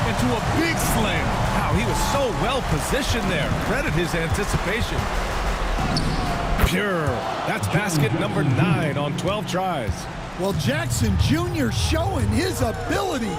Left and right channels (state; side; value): identical; both; correlation 1.00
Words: into a big slam. Wow, he was so well positioned there. Credit his anticipation. Pure. That's basket number 9 on 12 tries. Well, Jackson Jr. showing his ability